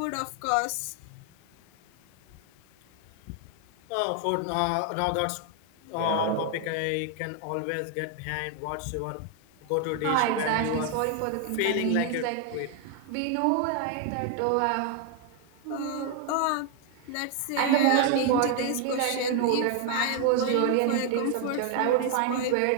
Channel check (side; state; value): both; different; correlation 0.00